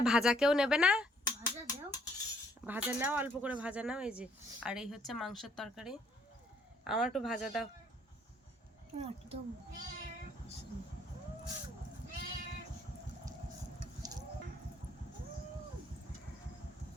ভাজা কেউ নেবে না? ভাজা দাও। ভাজা নাও, অল্প করে ভাজা নাও। এই যে, আর এই হচ্ছে মাংসের তরকারি। আমার একটু ভাজা দাও। একদম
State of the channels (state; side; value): normal; both; correlation 0.64